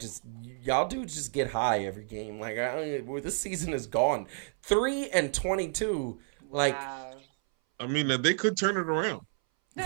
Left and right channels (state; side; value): silent; left; 58 dB below the other